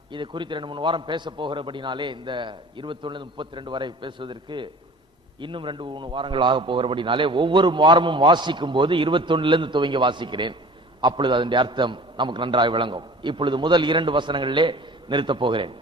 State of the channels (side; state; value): both; normal; correlation 0.44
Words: இது குறித்து 2-3 வாரம் பேச போகிறபடினாலே இந்த 21 32 வரை பேசுவதற்கு இன்னும் 2-3 வாரங்கள் ஆக போகிறபடினாலே ஒவ்வொரு வாரமும் வாசிக்கும் போது 21 துவங்கி வாசிக்கிறேன். அப்பொழுது அதனுடைய அர்த்தம் நமக்கு நன்றாக விளங்கும். இப்பொழுது முதல் 2 வசனங்களிலே நிறுத்தப் போகிறேன்.